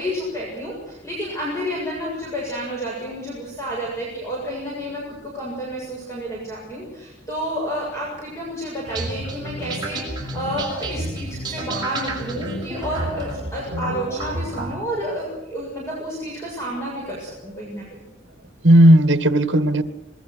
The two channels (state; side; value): normal; both; correlation 0.59